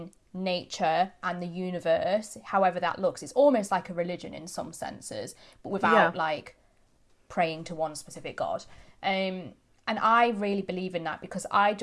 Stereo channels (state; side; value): identical; both; correlation 1.00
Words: nature and the universe, however that looks. It's almost like a religion in some senses, but without like praying to one specific god. And I really believe in that because I